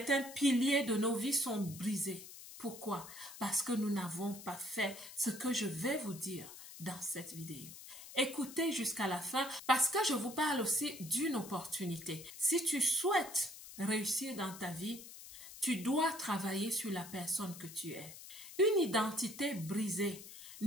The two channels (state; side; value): noise; left; hiss, 14 dB below the sound